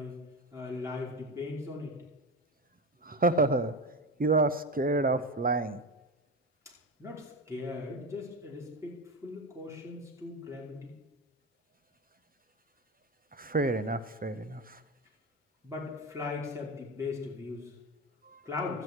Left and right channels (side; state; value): both; normal; correlation 0.20